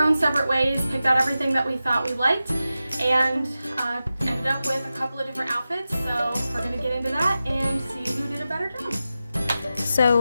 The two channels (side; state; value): both; inverted; correlation -0.93